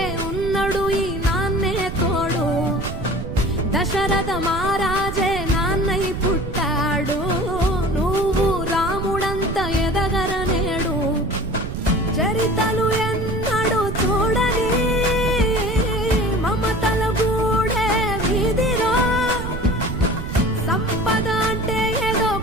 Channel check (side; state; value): right; noise; rumble, 6 dB below the sound